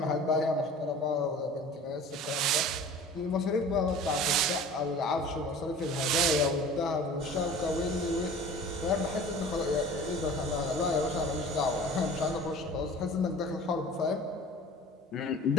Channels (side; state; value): both; normal; correlation 0.42